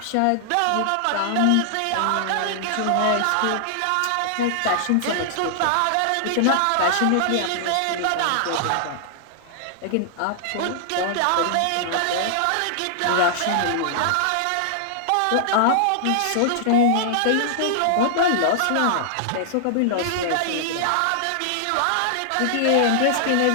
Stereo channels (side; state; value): both; different; correlation -0.01